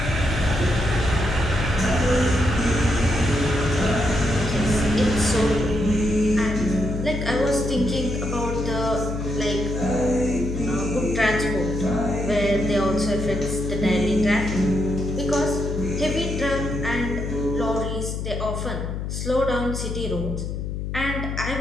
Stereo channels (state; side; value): noise; left; hum, 4 dB below the sound